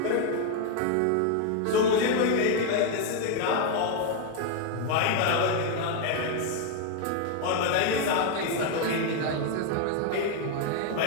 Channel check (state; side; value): different; both; correlation 0.01